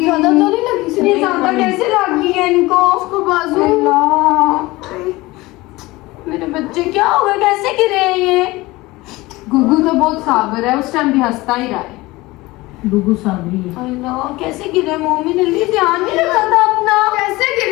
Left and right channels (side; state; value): right; quieter; 20.5 dB